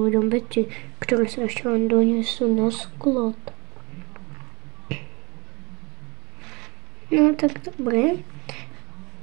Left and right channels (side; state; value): left; quieter; 26.9 dB